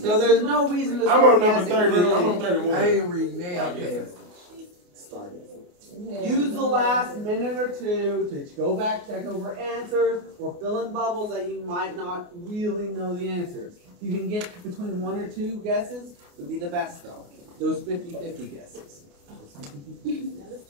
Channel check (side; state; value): left; late; 28 ms